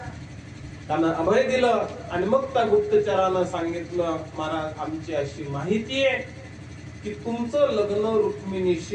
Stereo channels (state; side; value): identical; both; correlation 1.00